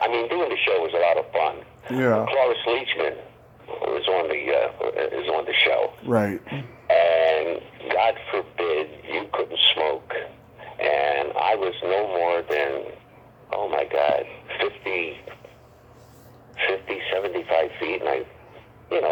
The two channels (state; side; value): identical; both; correlation 1.00